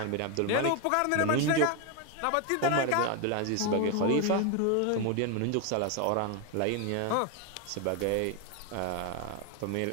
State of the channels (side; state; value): both; different; correlation 0.01